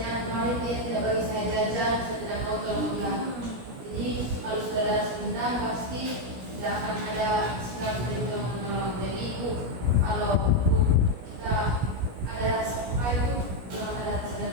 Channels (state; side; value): late; left; 17 ms